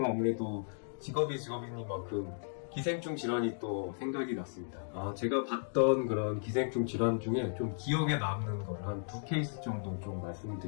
아무래도 직업이니만큼 기생충 질환이 또 생각이 났습니다. 제가 봤던 그런 기생충 질환 중에 좀 기억에 남는 걸 한 2케이스 정도 좀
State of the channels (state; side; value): silent; right; digital silence